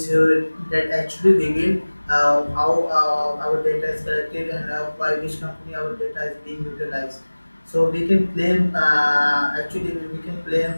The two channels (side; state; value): both; inverted; correlation -1.00